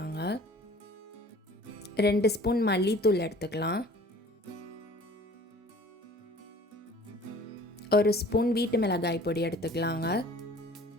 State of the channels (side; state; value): both; normal; correlation 0.49